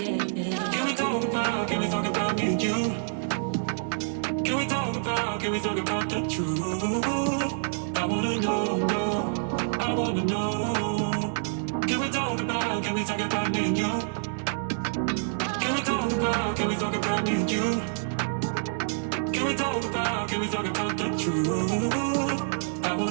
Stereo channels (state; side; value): silent; left; digital silence